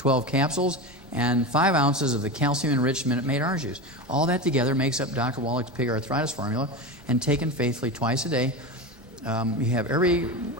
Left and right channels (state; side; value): normal; both; correlation 0.22